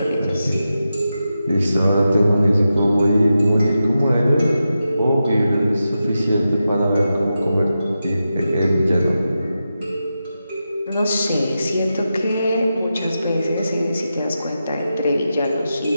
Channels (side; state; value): both; inverted; correlation -0.90